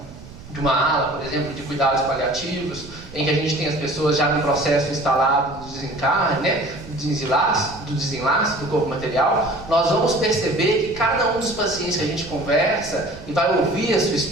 ala, por exemplo, de cuidados paliativos, em que a gente tem as pessoas já no processo instalado do desencarne, né, do desenlace do corpo material, nós vamos perceber que cada um dos pacientes que a gente conversa e vai ouvir a sua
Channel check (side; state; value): right; noise; rumble, 17 dB below the sound